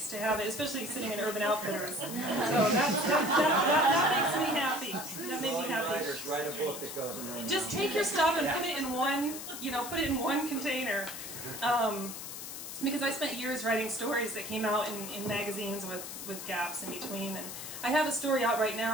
to have it, especially sitting in Urban Outfitters. So that makes me happy. That made me happy. Writers write a book that goes in there. Just take your stuff and put it in one container. Because I spent years writing stories that came out in magazines with gaps in between. And I have a story out right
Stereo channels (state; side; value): noise; left; hiss, 8 dB below the sound